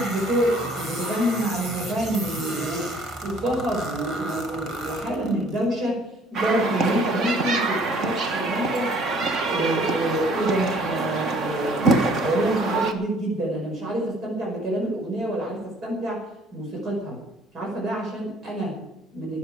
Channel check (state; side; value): normal; both; correlation 0.58